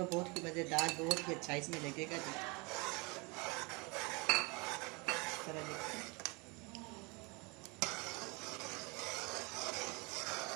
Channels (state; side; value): quieter; left; 28.6 dB